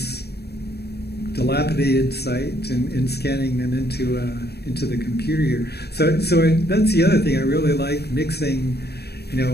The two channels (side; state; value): right; late; 0.47 ms